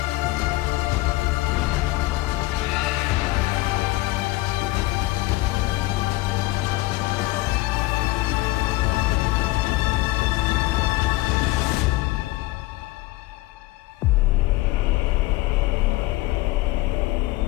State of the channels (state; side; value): quieter; right; 19.3 dB